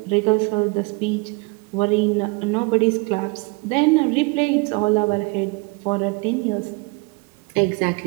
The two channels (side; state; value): left; quieter; 28.6 dB